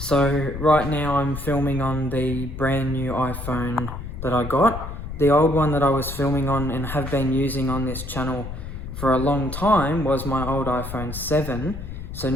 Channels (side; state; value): left; noise; rumble, 8 dB below the sound